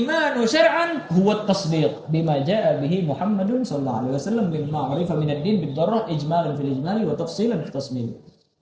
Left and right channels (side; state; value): both; identical; correlation 1.00